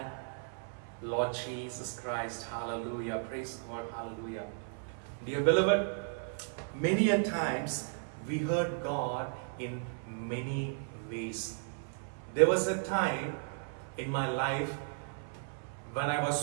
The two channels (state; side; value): silent; left; 54 dB below the other